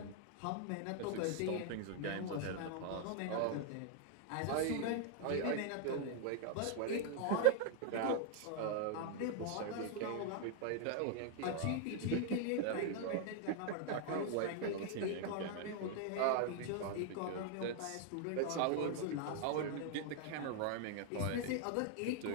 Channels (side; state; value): both; different; correlation 0.00